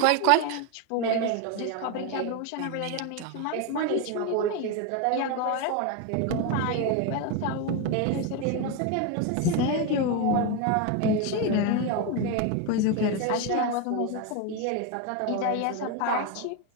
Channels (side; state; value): both; different; correlation 0.02